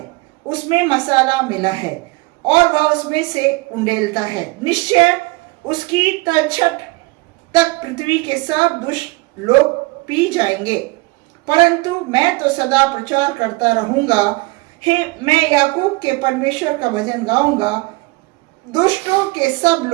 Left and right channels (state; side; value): quieter; left; 23.8 dB